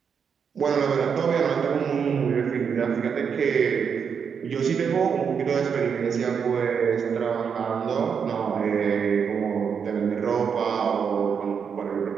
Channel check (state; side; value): quieter; left; 6.7 dB